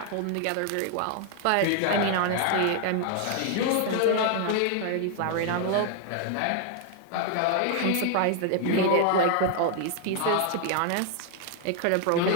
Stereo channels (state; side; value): different; both; correlation 0.00